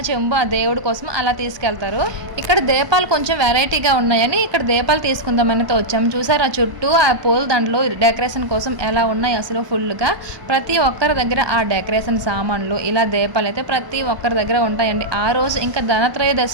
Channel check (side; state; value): left; late; 1.1 ms